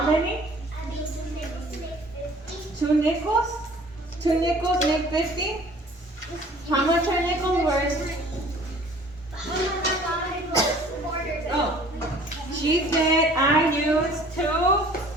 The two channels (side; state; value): both; normal; correlation 0.51